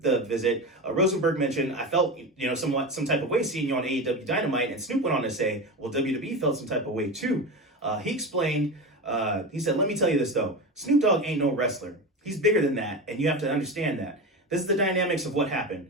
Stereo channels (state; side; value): normal; both; correlation 0.23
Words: visit, Rosenberg mentioned, I felt, some type of way seeing you on AEW Dynamite, and Snoop went on to say, well, WWE felt some type of way too. He explained, he said, let me tell you this though, Snoop Dogg ain't no wrestler. He's bigger than that, and you have to understand that. This is the dynamics of what